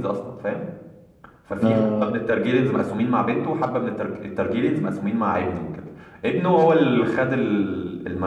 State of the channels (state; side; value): identical; both; correlation 1.00